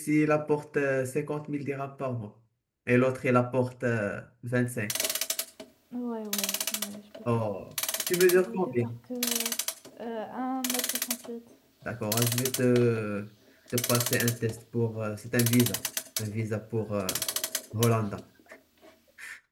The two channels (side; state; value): both; identical; correlation 1.00